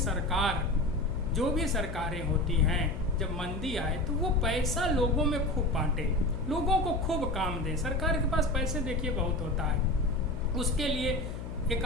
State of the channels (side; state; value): left; noise; hum, 8 dB below the sound